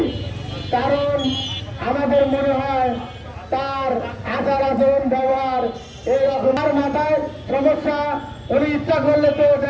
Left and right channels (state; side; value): identical; both; correlation 1.00